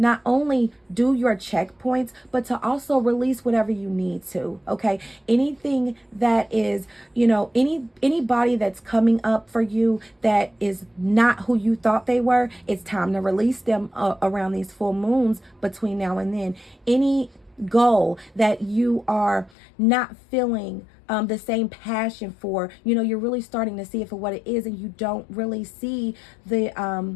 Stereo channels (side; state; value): right; drops out; at 19.5 s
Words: only do your checkpoints, but to also release whatever you need to. Okay, anything that is, you know, anybody that's coming up for you that is not who you thought they were, it's time to release them around these full moons between now and then. Any goal that you are not feeling the same passion for, you know, you're really starting to see it for what it is, and you don't really see the